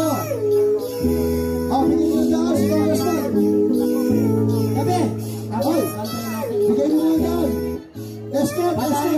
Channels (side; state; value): both; identical; correlation 1.00